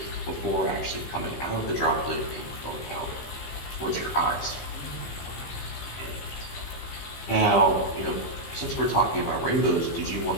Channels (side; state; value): right; late; 15 ms